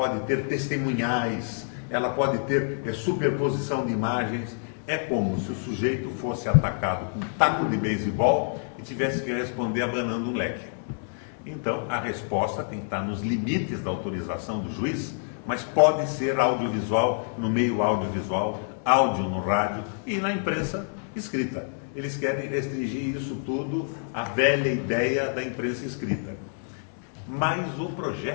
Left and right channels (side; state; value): right; silent; digital silence